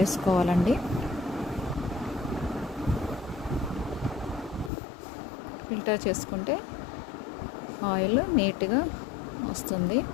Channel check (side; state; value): right; drops out; at 4.7 s